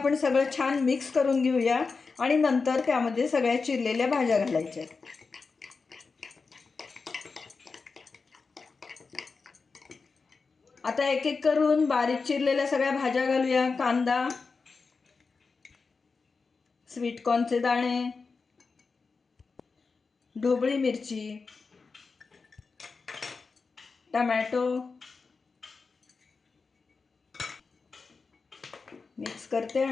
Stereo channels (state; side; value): quieter; right; 4.6 dB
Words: सगळं छान मिक्स करून घेऊया आणि नंतर त्यामध्ये सगळ्या चिरलेल्या भाज्या घालायच्या। आता एक एक करून बारीक चिरलेल्या सगळ्या भाज्या घालूया। कांदा, स्वीट कॉर्नचे दाणे, ढोबळी मिरची, टोमॅटो मिक्स करते